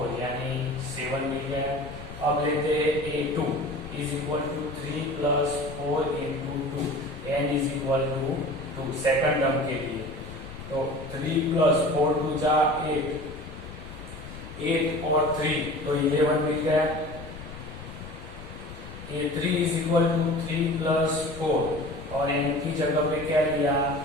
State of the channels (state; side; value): noise; left; rumble, 13 dB below the sound